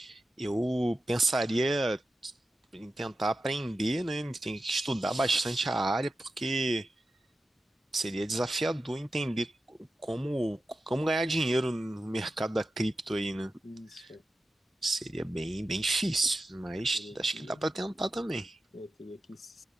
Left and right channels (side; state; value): both; normal; correlation 0.92